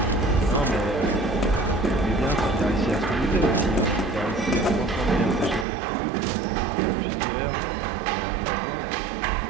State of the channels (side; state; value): left; drops out; at 5.7 s